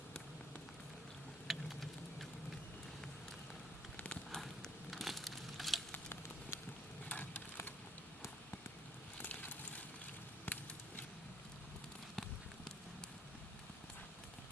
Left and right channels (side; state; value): both; normal; correlation 0.63